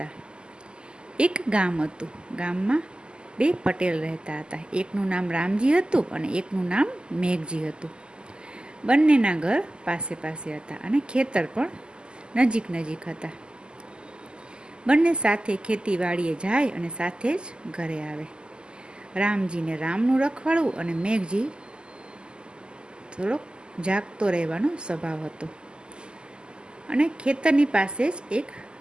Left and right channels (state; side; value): late; left; 0.048 ms